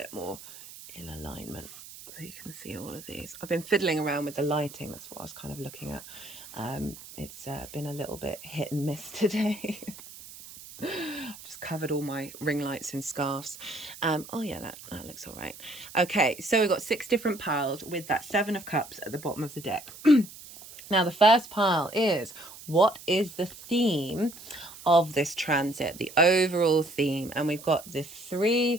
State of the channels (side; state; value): right; noise; hiss, 16 dB below the sound